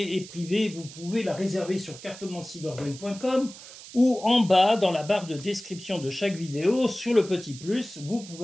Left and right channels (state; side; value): noise; right; hiss, 16 dB below the sound